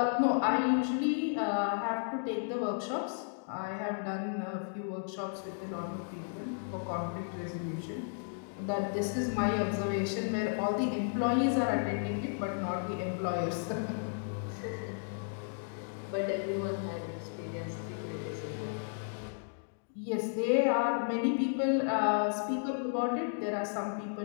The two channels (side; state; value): right; silent; digital silence